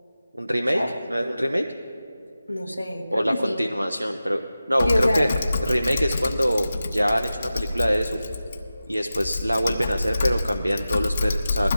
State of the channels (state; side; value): inverted; both; correlation -0.94